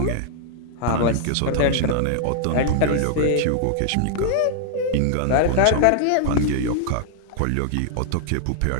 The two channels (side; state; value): both; different; correlation -0.01